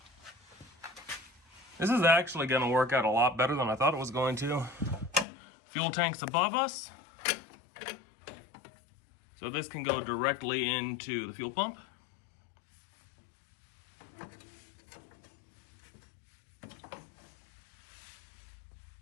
This is actually going to work out a lot better than I thought it was going to. Fuel tank's above us. So this can go directly into the fuel pump.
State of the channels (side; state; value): right; drops out; at 5.2 s